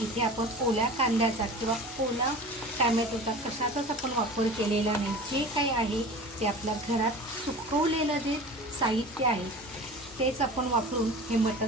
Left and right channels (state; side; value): normal; both; correlation 0.37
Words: इथे आपण ओल्या कांद्याचा किंवा ओला टॅमॅटोचा कशाचाच आपण वापर केलेला नाही. जे काही आहे ते आपल्या घरात सुकवलेलं जे साहित्य आहे तेच आपण वापरून हे